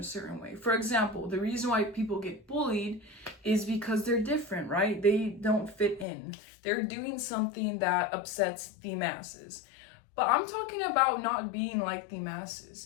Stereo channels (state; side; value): drops out; right; at 6.1 s